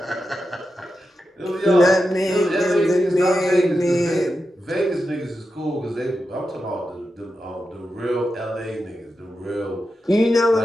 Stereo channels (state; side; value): normal; both; correlation 0.89